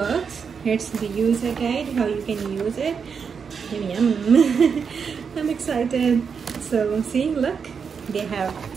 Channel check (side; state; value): left; quieter; 6.2 dB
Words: Here's the user guide, how you can use it. Yum. I'm excited. So see, look, they have